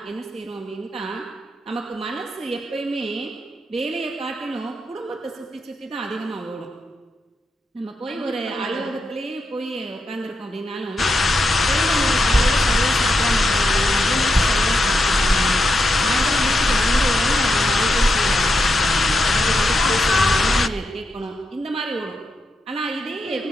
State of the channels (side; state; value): both; normal; correlation 0.84